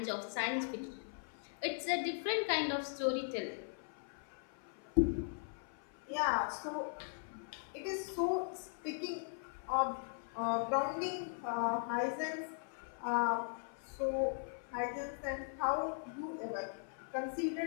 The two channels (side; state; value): right; silent; 52 dB below the other